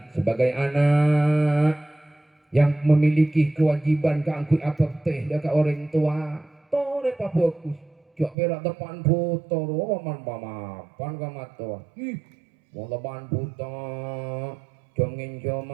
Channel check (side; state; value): left; drops out; at 8.3 s